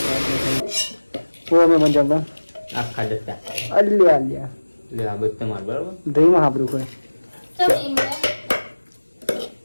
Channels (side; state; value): both; inverted; correlation -1.00